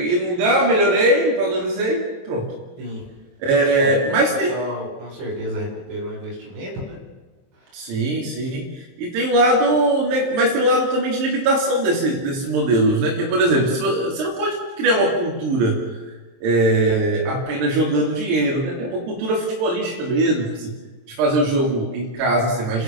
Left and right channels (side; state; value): left; late; 23 ms